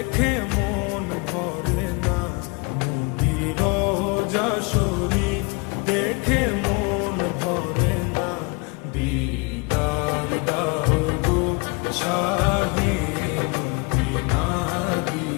মন ভরে না, নবীর রওজা শরীফ দেখে মন ভরে না। দিদার দাও গো শাহে মদিনা,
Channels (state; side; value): quieter; right; 28.8 dB